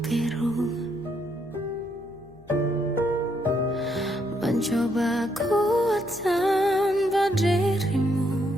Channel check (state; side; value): noise; left; hum, 26 dB below the sound